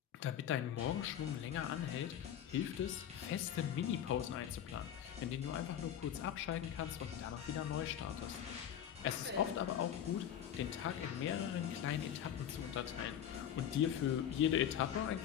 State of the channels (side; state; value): right; quieter; 9.9 dB